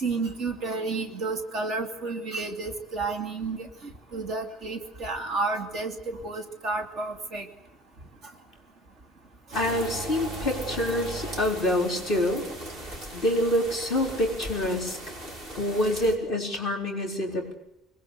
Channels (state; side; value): normal; both; correlation 0.43